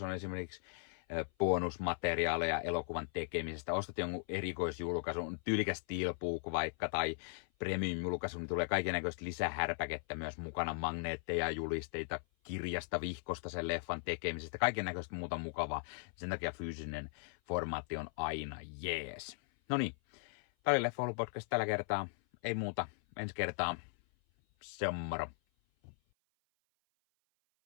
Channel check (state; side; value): silent; right; 52 dB below the other